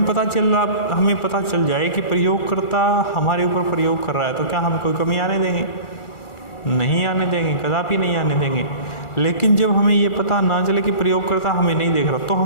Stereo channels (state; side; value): late; right; 2.4 ms